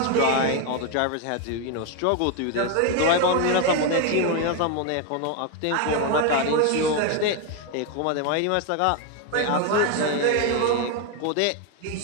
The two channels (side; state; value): both; different; correlation 0.01